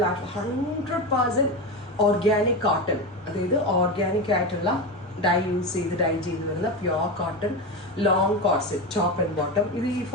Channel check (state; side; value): normal; both; correlation 0.19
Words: ആയിട്ടുള്ള 100% ഓർഗാനിക് കോട്ടൺ, അതായത് ഓർഗാനിക് ആയിട്ടുള്ള ഡൈ ചെയ്ത് വരുന്ന pure cotton long corset top and bottom. ഇത് ഈ